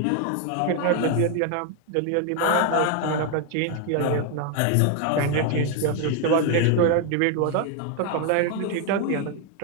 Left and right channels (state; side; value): different; both; correlation 0.01